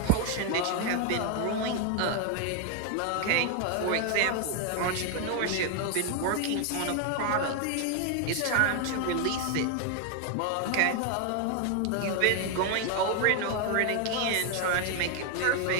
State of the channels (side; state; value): both; different; correlation 0.01